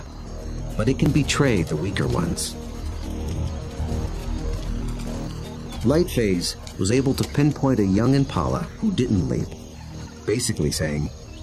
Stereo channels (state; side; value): identical; both; correlation 1.00